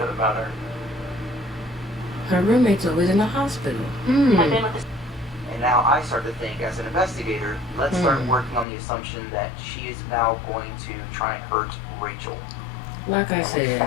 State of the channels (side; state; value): right; drops out; at 8.7 s